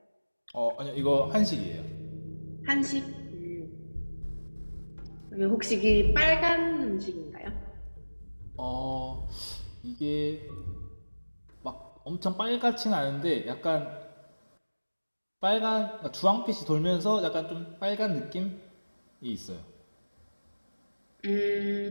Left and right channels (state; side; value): inverted; both; correlation -1.00